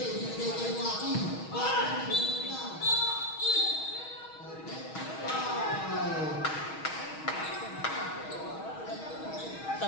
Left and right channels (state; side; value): late; right; 6.3 ms